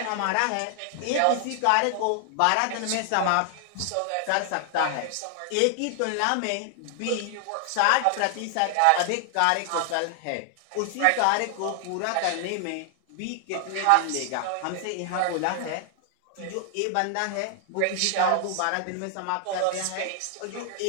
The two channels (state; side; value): different; both; correlation 0.00